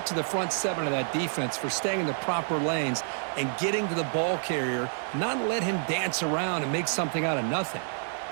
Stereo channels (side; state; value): left; silent; digital silence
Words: to the front 7 of that defense for staying in the proper lanes and getting to the ball carrier, not let him dance around and make something out of nothing.